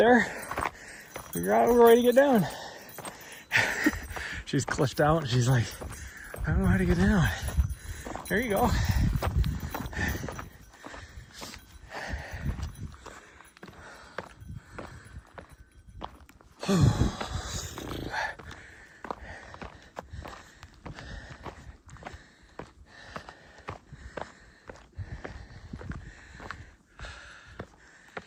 Figure out a way to get down. She's clutched out and she's like, I don't know how to get down. There you go.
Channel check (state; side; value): identical; both; correlation 1.00